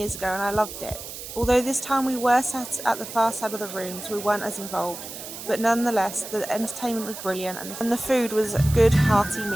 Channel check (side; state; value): right; noise; hiss, 11 dB below the sound